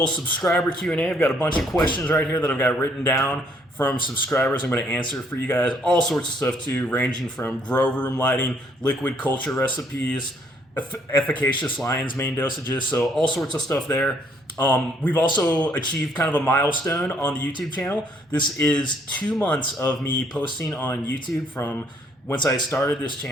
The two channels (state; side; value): normal; both; correlation 0.66